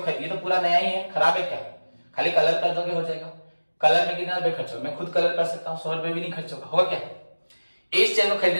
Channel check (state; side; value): inverted; both; correlation -1.00